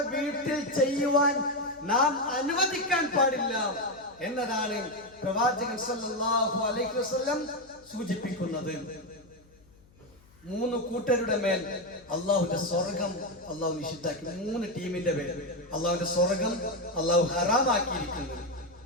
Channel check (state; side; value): noise; left; hum, 28 dB below the sound